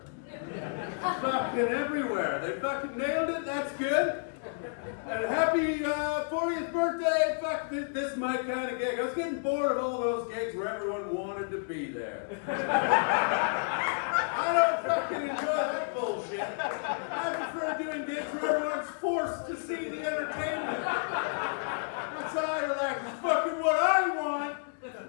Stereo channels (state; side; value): silent; right; 57 dB below the other